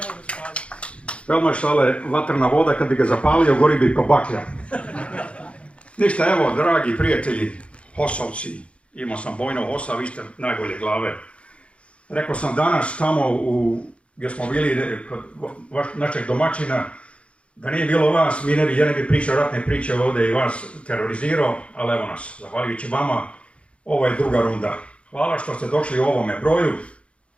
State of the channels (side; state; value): right; late; 0.060 ms